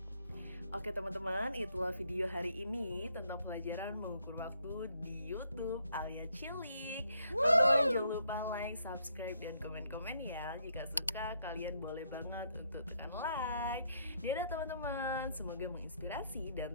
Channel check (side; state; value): both; inverted; correlation -0.72